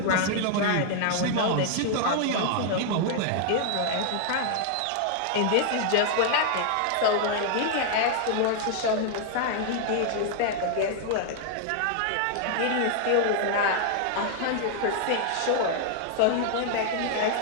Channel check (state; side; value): different; both; correlation 0.00